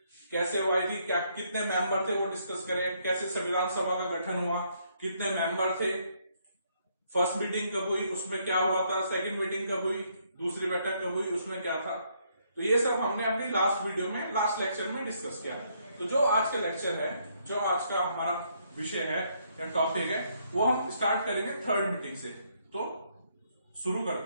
कैसे वो आई थी, क्या कितने मेंबर थे वो डिस्कस करें, कैसे संविधान सभा का गठन हुआ, कितने मेंबर थे, फर्स्ट मीटिंग कब हुई, उसमें क्या हुआ था, सेकंड मीटिंग कब हुई, दूसरी बैठक कब हुई, उसमें क्या था। तो ये सब हमने अपनी लास्ट वीडियो में, लास्ट लेक्चर में डिस्कस किया। तो जो आज का लेक्चर है, जो आज का हमारा विषय है या टॉपिक है, वो हम स्टार्ट करेंगे थर्ड मीटिंग से। तो शुरू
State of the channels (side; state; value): both; inverted; correlation -0.72